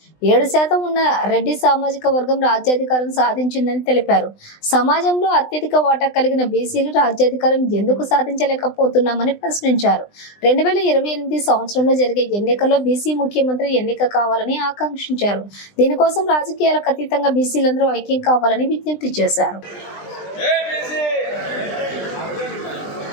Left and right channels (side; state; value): right; late; 20 ms